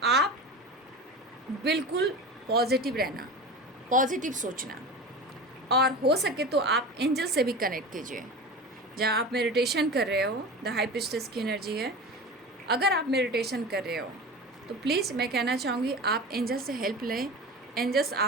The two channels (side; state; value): both; normal; correlation 0.30